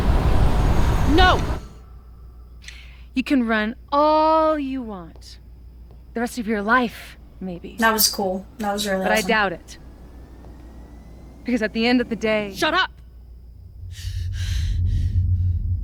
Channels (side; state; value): both; identical; correlation 1.00